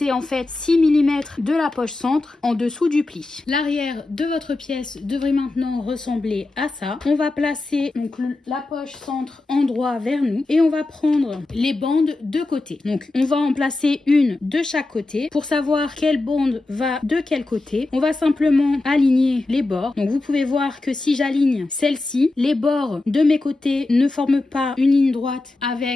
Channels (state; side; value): quieter; right; 3.1 dB